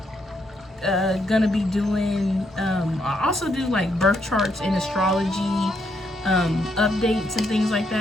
gonna be doing, I also do like birth charts and astrology updates and things like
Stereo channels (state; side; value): normal; both; correlation 0.76